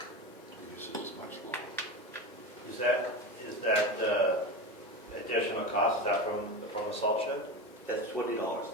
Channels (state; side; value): normal; both; correlation 0.23